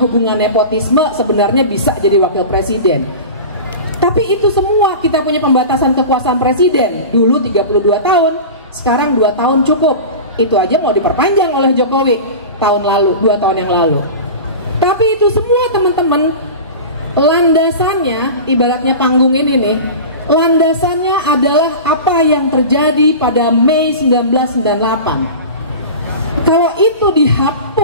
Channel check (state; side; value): inverted; both; correlation -0.32